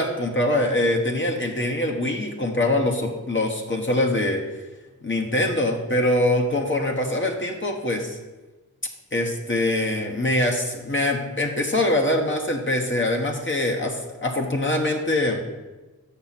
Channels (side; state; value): both; normal; correlation 0.26